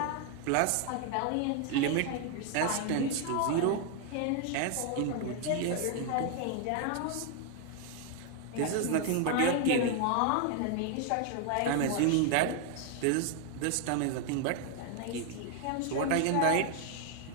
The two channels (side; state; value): both; different; correlation 0.00